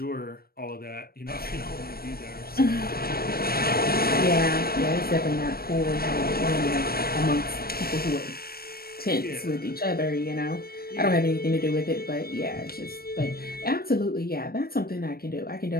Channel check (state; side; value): late; right; 0.44 ms